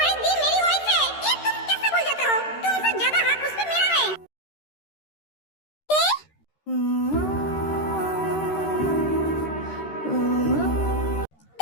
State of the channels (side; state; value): right; late; 13 ms